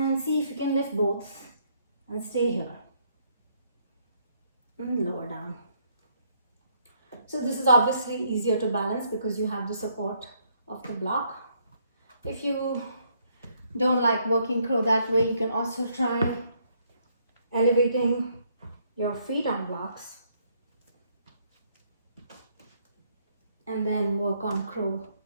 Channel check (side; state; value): both; inverted; correlation -0.70